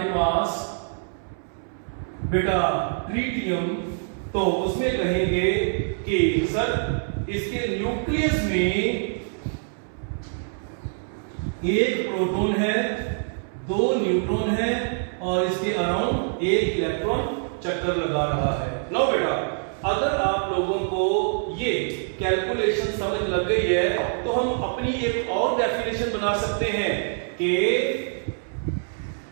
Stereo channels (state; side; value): silent; left; 62 dB below the other